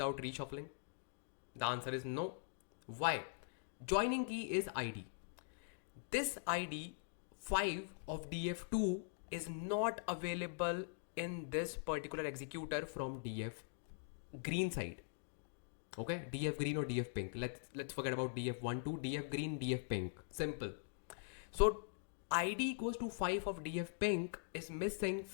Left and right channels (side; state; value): right; silent; digital silence